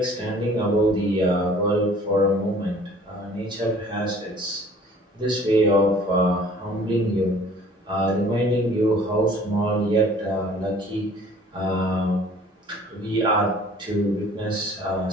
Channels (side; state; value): both; normal; correlation 0.52